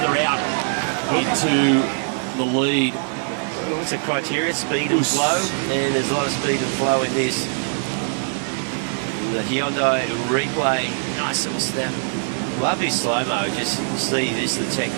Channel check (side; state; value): left; silent; digital silence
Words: out into the lead. What's the criteria? Speed and flow. And there's a lot of speed and flow in this. The Hyundai replay. Nice little snap. Love his slow-mo. Just see this, the